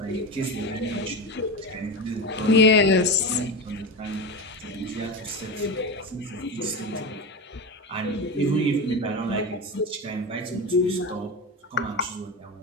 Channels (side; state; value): both; normal; correlation 0.21